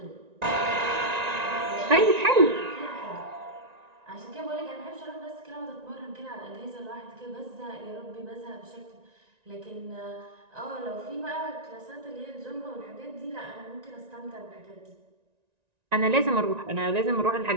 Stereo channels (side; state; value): left; late; 1.9 ms